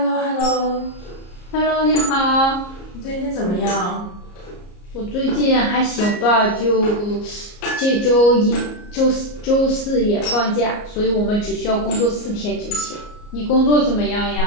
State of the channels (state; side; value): late; right; 34 ms